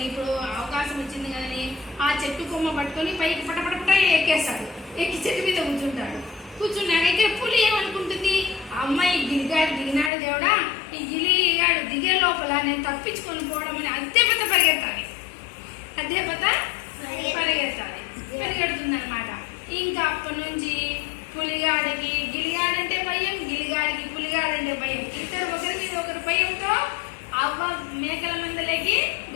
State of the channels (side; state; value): right; drops out; at 10.1 s